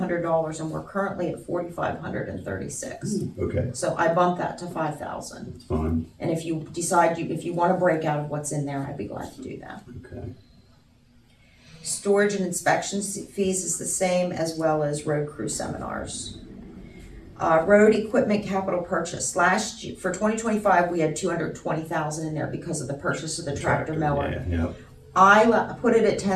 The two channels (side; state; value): both; identical; correlation 1.00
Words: and we're currently at $4,536. Okay, So I bumped that to 5,000. that's fine, And if you decide if you want to break out of what's in there, I'd be glad to do that. okay. Storage and inspection fees is the same, as well as road crew seminars. Road equipment capital purchase. Last year, for 2025, we had 220,000 in there because of the purchase of the tractor mower. Yeah, yeah. I put it at